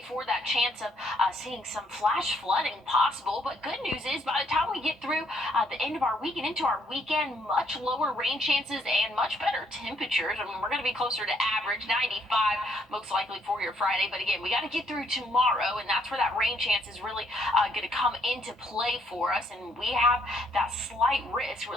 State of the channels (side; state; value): both; normal; correlation 0.69